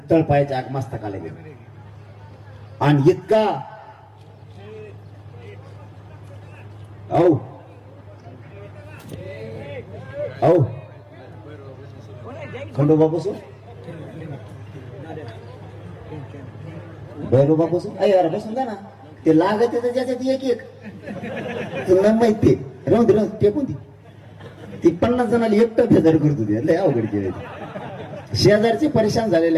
तळपायाच्या आगमस्तकाला गेले. आणि इतका खंडोबा बसून भैरोबा बसून यार बसून जा ना. ते लागत ज्याच्यात एक एक तुला माहिती राहून ते कोणती ती 50 जणांना एकटं फेदर करत होती. लय अवघड केले. शेजारचे परेशान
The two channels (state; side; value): identical; both; correlation 1.00